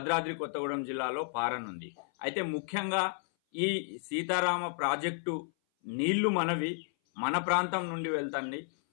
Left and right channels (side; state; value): right; silent; 56 dB below the other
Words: కొత్తగూడెం జిల్లాలో పారనుంది. అయితే ముఖ్యంగా ఈ సీతారామ ప్రాజెక్టు నీళ్లు మన ప్రాంతం నుండి వెళ్తుంది.